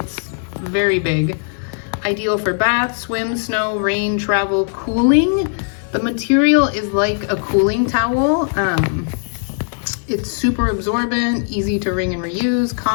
very big. Ideal for bath, swim, snow, rain, travel, cooling. The material is like a cooling towel. It's super absorbent, easy to wring and reuse,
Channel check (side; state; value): right; silent; 67 dB below the other